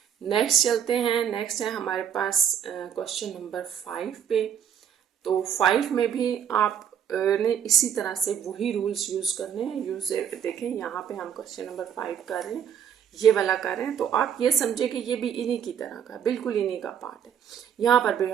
नेक्स्ट चलते हैं। नेक्स्ट है हमारे पास क्वेश्चन नंबर 5 पे। तो 5 में भी आप ने इसी तरह से वही रूल्स यूज करने हैं। यूज देखें, यहाँ पे हम क्वेश्चन नंबर 5 कर रहे हैं, ये वाला कर रहे हैं, तो आप ये समझे कि ये भी इन्हीं की तरह का, बिल्कुल इन्हीं का पार्ट है। यहाँ पर भी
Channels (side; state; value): left; quieter; 8.7 dB